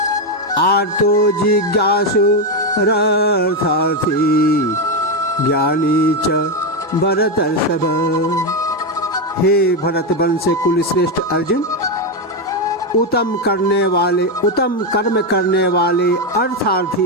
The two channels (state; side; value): normal; both; correlation 0.08